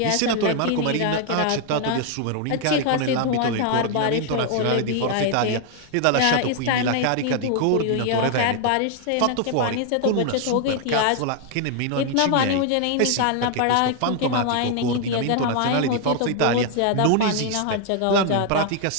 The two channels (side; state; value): both; different; correlation 0.00